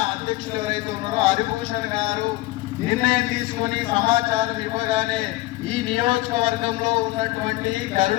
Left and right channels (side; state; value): right; quieter; 19.6 dB